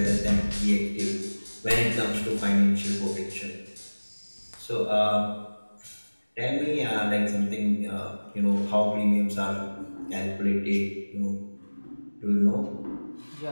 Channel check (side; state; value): both; inverted; correlation -1.00